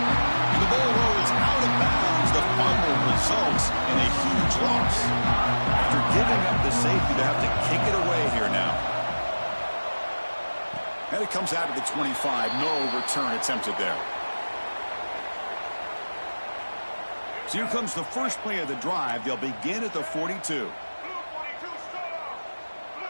the ball rolls out of bounds. The fumble results in a huge loss. After giving up the safety, they have to kick it away here now. And it comes out of the 25. No return attempted there. So here comes the first play of the drive. They'll begin at the 42.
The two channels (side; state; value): both; inverted; correlation -1.00